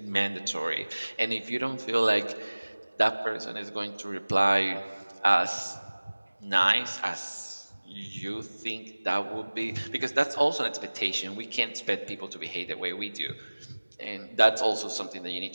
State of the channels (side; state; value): both; inverted; correlation -1.00